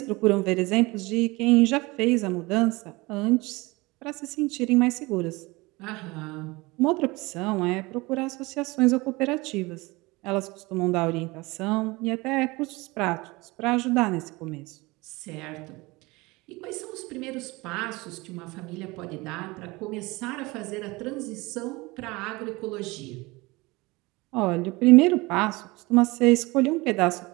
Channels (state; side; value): quieter; left; 23.1 dB